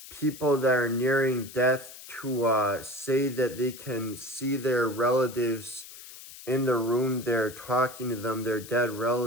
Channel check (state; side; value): noise; left; hiss, 16 dB below the sound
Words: people that are nearing death to say that they can see their relatives in the room they're talking to them, their dead